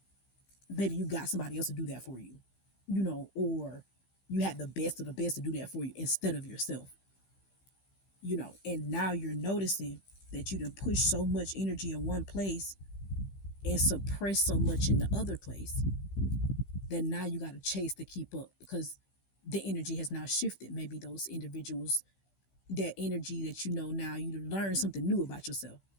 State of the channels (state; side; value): late; right; 15 ms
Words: maybe you got somebody else to do that for you, you know, or you had the best of the best to do that for you instead of yourself, you know, and now you're noticing that you done push so much energy in one place and suppress so much in the other place that now you got to chase to keep up because the energy has now shifted. Maybe those individuals, that energy that you know now, you learn something new about yourself.